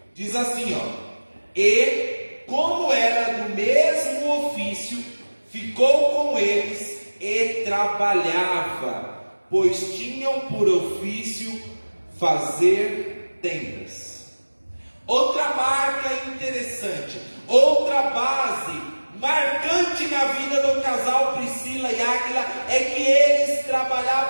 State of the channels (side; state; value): both; inverted; correlation -1.00